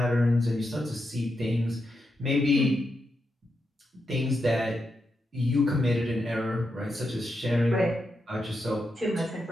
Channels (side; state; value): both; normal; correlation 0.85